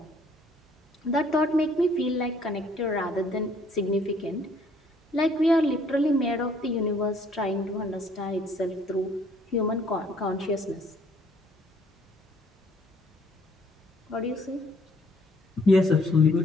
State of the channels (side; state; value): both; normal; correlation 0.61